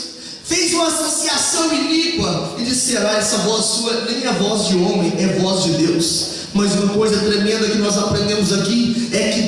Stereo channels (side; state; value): both; identical; correlation 1.00